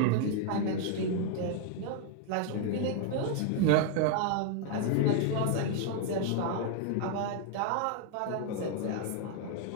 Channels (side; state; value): both; different; correlation 0.00